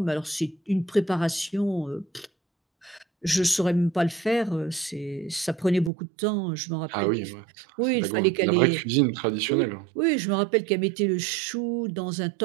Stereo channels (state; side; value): drops out; left; at 5.9 s